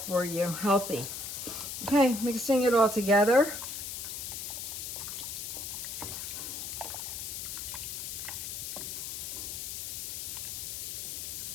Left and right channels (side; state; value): left; noise; hiss, 5 dB below the sound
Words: you. Healthy. Okay, mixing it all together.